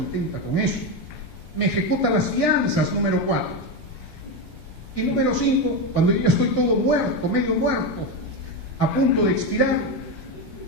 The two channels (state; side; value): late; right; 18 ms